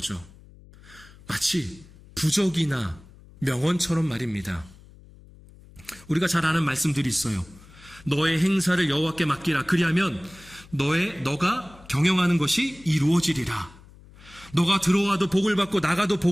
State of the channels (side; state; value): left; noise; hum, 23 dB below the sound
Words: 마치 부적이나 명언처럼 말입니다. 우리가 잘 아는 말씀들이 있어요. 너의 행사를 여호와께 맡기라. 그리하면 너가 경영하는 것이 이루어지리라. 너가 들어와도 복을 받고 나가도